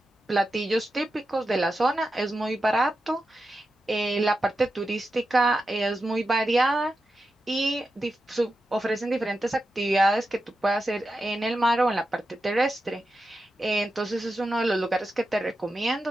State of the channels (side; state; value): both; normal; correlation 0.90